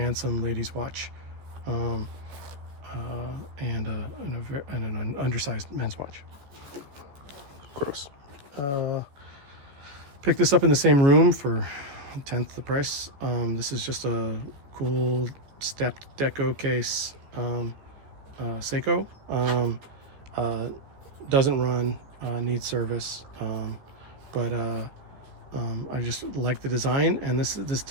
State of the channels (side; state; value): left; late; 14 ms